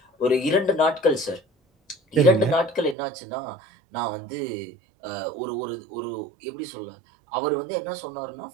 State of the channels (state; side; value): drops out; left; at 3.0 s